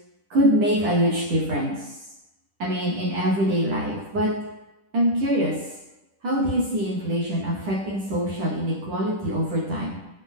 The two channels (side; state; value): left; late; 10 ms